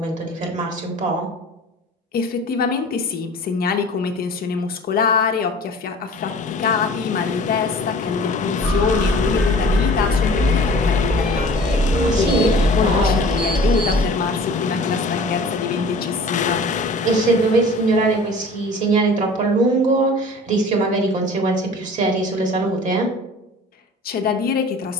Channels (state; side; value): normal; both; correlation 0.44